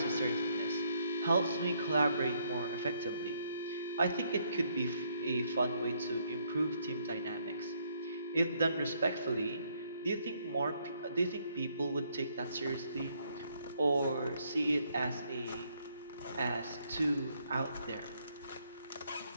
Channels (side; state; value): both; inverted; correlation -0.70